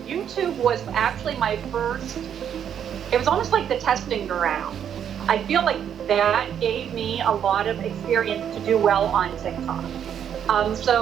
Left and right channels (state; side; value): quieter; left; 8.9 dB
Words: YouTube was actually my first. It was almost like the testing ground. I feel like that gave me a lot of experience to do well on TikTok.